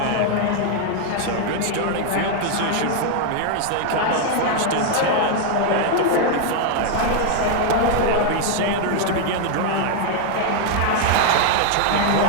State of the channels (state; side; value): different; both; correlation 0.00